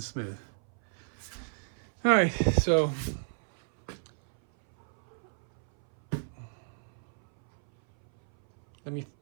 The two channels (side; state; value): left; silent; 57 dB below the other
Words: smooth. All right, so let me